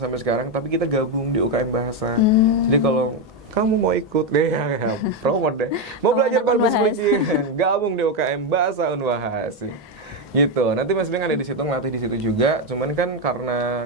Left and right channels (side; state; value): both; normal; correlation 0.07